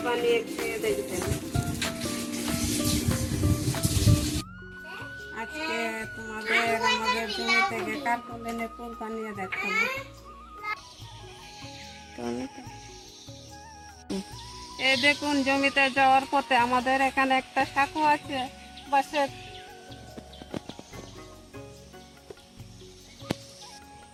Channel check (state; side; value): identical; both; correlation 1.00